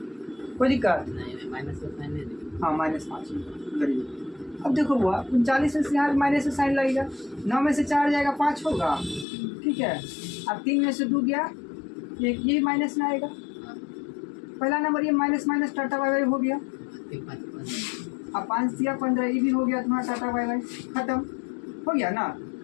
कोई दिक्कत हाँ -5 गरीब। अब देखो हुआ 39 से यहाँ माइनस से साइन लगेगा, 9 में से 4 जाएगा 5 होगा, ठीक है। अब 3 में से 2 गया, ये माइनस में आएगा, पहला नंबर ये माइनस टाटा बाय हो गया, अब 5 दिया 15, ये भी हो गया तुम्हारा टाटा बाय खत्म हो गया ना।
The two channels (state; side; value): drops out; right; at 9.2 s